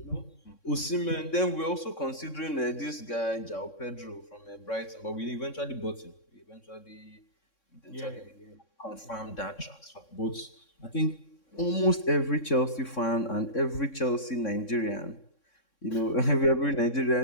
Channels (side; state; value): right; late; 3.6 ms